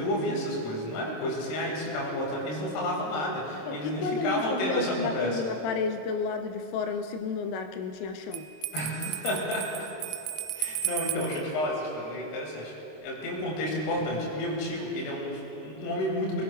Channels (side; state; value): right; late; 26 ms